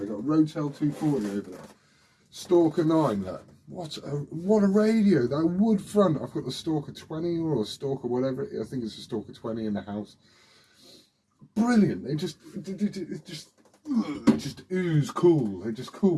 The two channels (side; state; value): both; identical; correlation 1.00